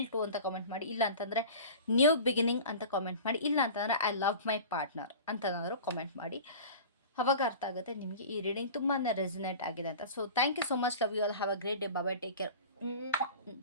2 ಅಂತ ಕಾಮೆಂಟ್ ಮಾಡಿ, ಇಲ್ಲ ಅಂತಂದರೆ ನ್ಯೂ ಬಿಗಿನಿಂಗ್ ಅಂತ ಕಾಮೆಂಟ್ ಮಾಡಿ, ಇಲ್ಲ ಅಂತಂದರೆ ಐ ಲವ್ ಮೈ ಪಾರ್ಟ್ನರ್ ಅಂತನಾದರೂ ಕಾಮೆಂಟ್ ಮಾಡಿ. ಅವಾಗ ಅರ್ಥ ಆಗುತ್ತೆ ನಿಮಗೆ ಈ ರೀಡಿಂಗ್ ತುಂಬಾ ರೆಸಿನೇಟ್ ಆಗಿದೆ ಅಂತ. So thank you so much. Love you all. Have a great day. Bye. Take care.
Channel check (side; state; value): both; inverted; correlation -0.37